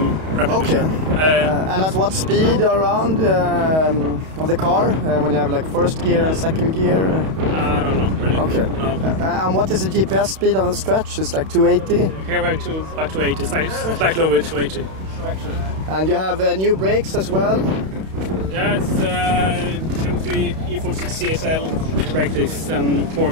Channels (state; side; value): late; left; 32 ms